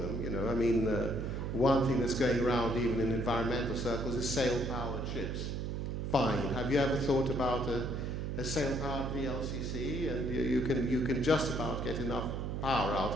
You know, I mean, one thing that's going around even in environmental circles is sail-powered ships. Fine. Have you ever thought about a sail-powered VLCC? And you can just about get enough power out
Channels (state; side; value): noise; right; hum, 3 dB below the sound